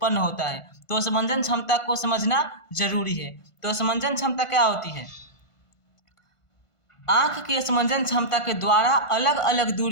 होता है। तो स्मंजन क्षमता को समझना जरूरी है। तो स्मंजन क्षमता क्या होती है? आंख की स्मंजन क्षमता के द्वारा अलग अलग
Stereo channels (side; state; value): right; late; 1.5 ms